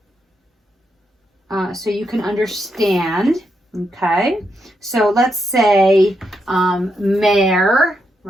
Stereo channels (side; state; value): both; normal; correlation 0.81